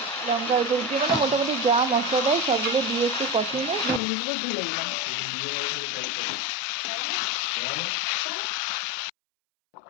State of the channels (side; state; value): right; drops out; at 4.0 s